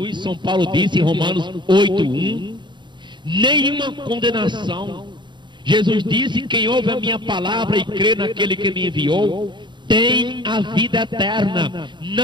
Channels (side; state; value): left; late; 0.22 ms